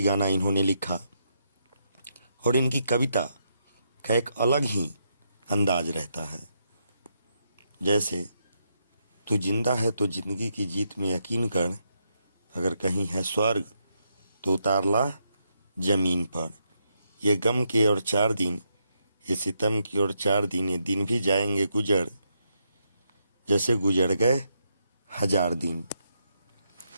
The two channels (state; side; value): inverted; both; correlation -0.80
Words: गाना इन्होंने लिखा और इनकी कविता का एक अलग ही अंदाज रहता है। जैसे तू जिंदा है तो जिंदगी की जीत में यकीन कर, अगर कहीं है स्वर्ग तो उतार ला जमीन पर। ये गम के और 4 दिन, ये सितम की और 4 दिन, ये दिन भी जाएंगे गुजर, जैसे गुजर गए 1000 दिन।